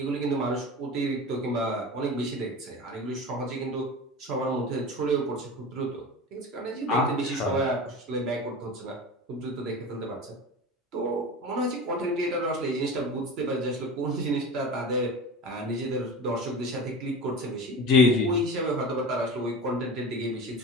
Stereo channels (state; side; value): normal; both; correlation 0.31